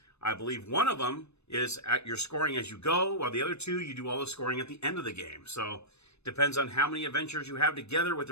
I believe one of them is at your scoring as you go, while the other 2, you do all the scoring at the end of the game. So it depends on how many adventures you have together with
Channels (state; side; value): late; right; 0.80 ms